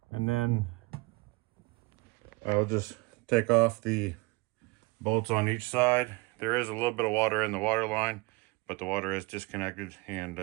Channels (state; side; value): quieter; left; 24.7 dB